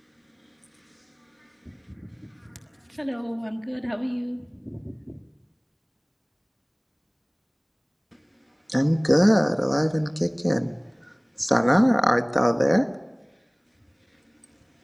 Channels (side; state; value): both; identical; correlation 1.00